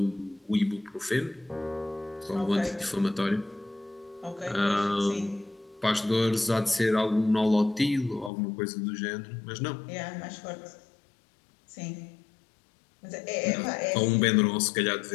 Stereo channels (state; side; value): drops out; right; at 8.3 s